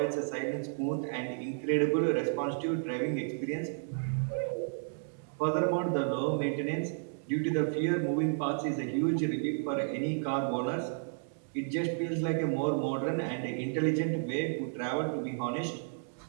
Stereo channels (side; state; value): left; silent; digital silence